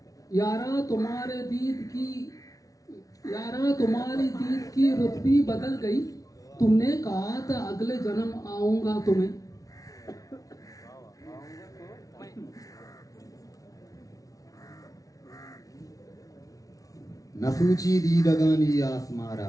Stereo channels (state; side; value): late; right; 0.17 ms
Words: यारा तुम्हारे दीद की, यारा तुम्हारी दीद की रुतबी बदल गई। तुमने कहा था अगले जन्म आऊंगा तुम्हें। नसूची दीदगानी आसमारा,